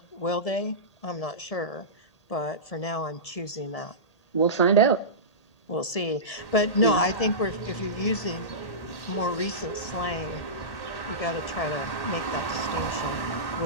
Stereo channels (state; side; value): late; right; 1.8 ms